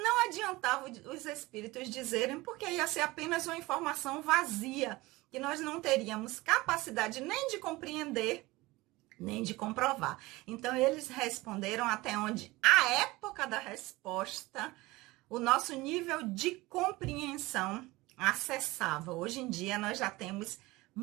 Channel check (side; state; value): left; quieter; 20.8 dB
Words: adiantava os espíritos dizerem, porque ia ser apenas uma informação vazia, que nós não teríamos capacidade nem de compreender, nem de comprovar. Então, eles responderam até onde a época da resposta, o nosso nível de compreensão acessava. Hoje em dia, nós já temos